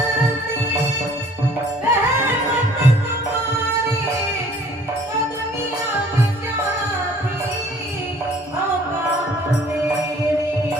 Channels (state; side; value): normal; both; correlation 0.55